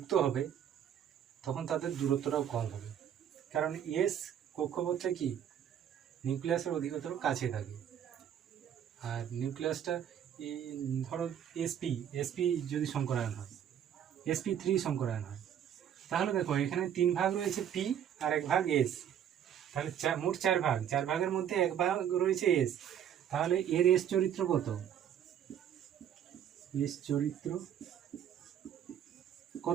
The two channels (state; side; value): quieter; left; 9.6 dB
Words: হবে তখন তাদের দূরত্বটাও কম হবে, কারণ এস কক্ষপথটা কি নিউক্লিয়াসের অধিকতর কাছে থাকে। আর নিউক্লিয়াসটা ধরো এসপি এসপি যদি সংকরায়ন হয়, sp3 সংকরায়ন হয়, তাহলে দেখো এখানে 3 ভাগ রয়েছে পি আর 1 ভাগ এস, তাহলে মোট 4 ভাগ, 4 ভাগের মধ্যে 1 ভাগ রয়েছে এস। তাহলে এর এস চরিত্র কত? এস চরিত্র